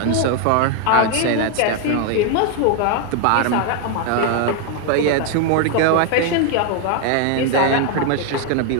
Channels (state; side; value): different; both; correlation 0.01